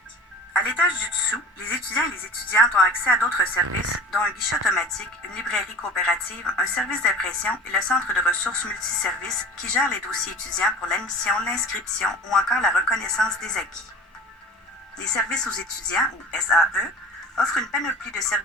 À l'étage du dessous, les étudiants et les étudiantes ont accès à d'autres services, dont un guichet automatique, une librairie coopérative, un service d'impression et le centre de ressources multiservices qui gère les dossiers étudiants pour l'admission, l'inscription ou encore la reconnaissance des acquis. Les services aux étudiants, ou SAE, offrent une panoplie de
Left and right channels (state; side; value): normal; both; correlation 0.40